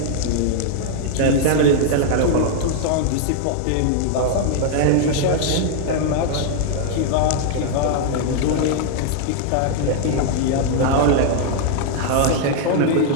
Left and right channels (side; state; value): both; different; correlation 0.00